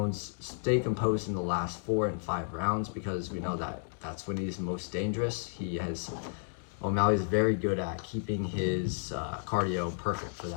in the last 4 and 5 rounds, because we know that that's when he's most dangerous. O'Malley's very good at keeping his cardio perfect for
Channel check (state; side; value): silent; right; digital silence